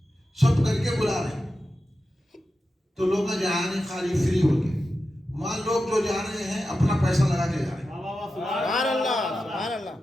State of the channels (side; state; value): both; normal; correlation 0.91